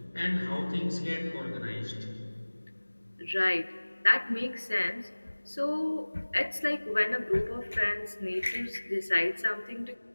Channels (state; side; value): inverted; both; correlation -1.00